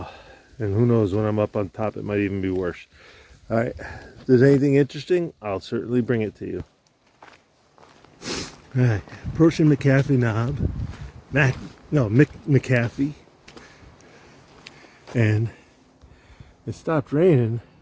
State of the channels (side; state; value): both; identical; correlation 1.00